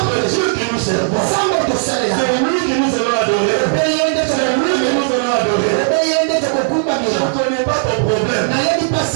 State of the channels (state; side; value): silent; left; digital silence